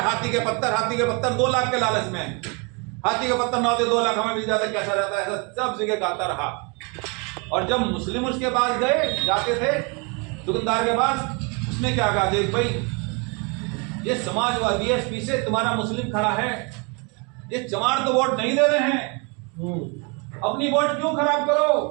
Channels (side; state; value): left; quieter; 32.7 dB